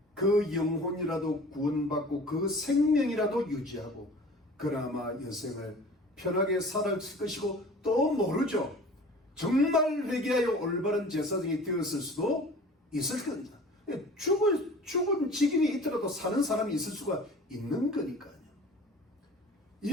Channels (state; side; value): normal; both; correlation 0.44